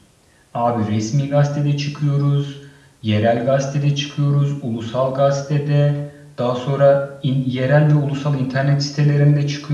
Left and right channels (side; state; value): both; identical; correlation 1.00